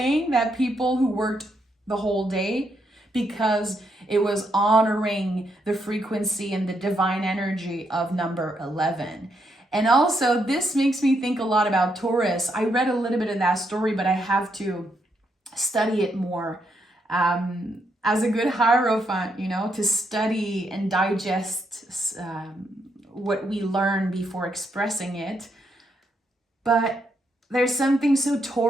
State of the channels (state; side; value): normal; both; correlation 0.78